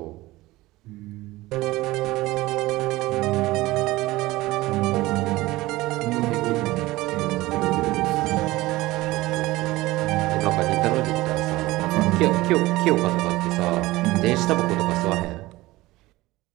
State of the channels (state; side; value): quieter; left; 18.9 dB